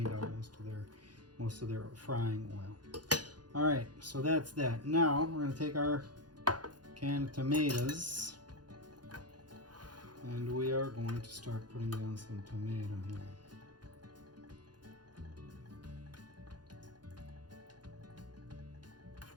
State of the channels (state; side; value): late; left; 0.70 ms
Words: out most of their frying oil. All right, so that's that. Now we're gonna take our canned tomatoes, and we are going to start putting down some tomato here.